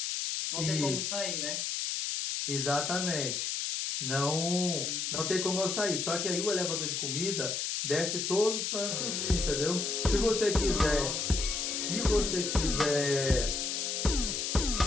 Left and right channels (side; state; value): left; noise; hiss, 1 dB below the sound